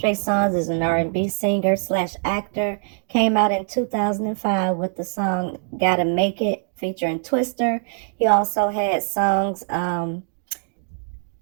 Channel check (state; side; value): silent; left; digital silence